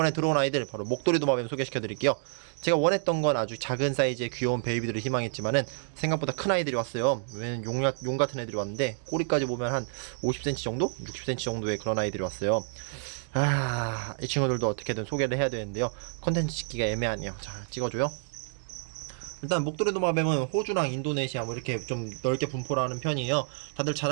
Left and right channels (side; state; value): left; silent; digital silence